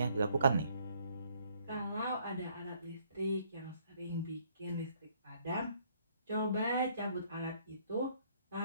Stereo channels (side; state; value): both; inverted; correlation -0.65